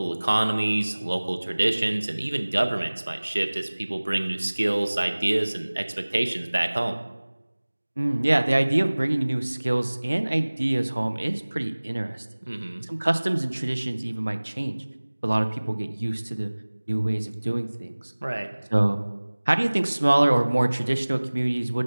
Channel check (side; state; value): both; inverted; correlation -1.00